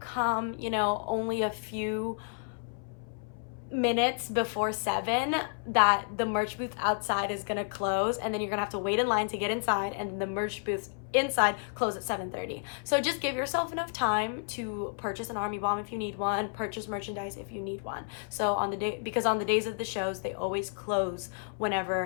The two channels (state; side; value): silent; right; 57 dB below the other